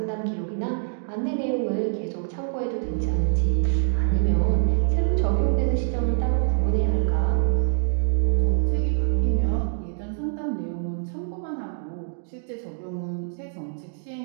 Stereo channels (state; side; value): silent; left; digital silence